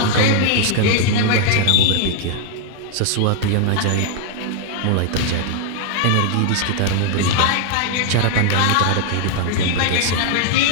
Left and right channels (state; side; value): different; both; correlation 0.00